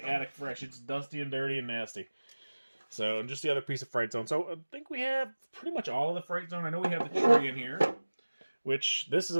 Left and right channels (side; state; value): both; inverted; correlation -1.00